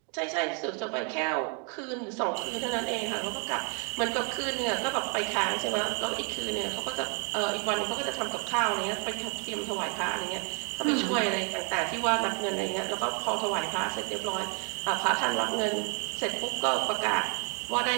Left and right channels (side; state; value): left; quieter; 38.8 dB